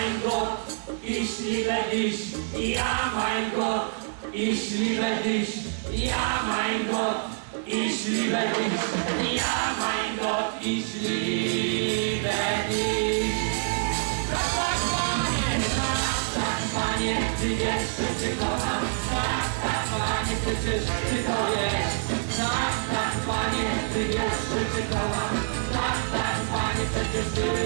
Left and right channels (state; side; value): silent; left; digital silence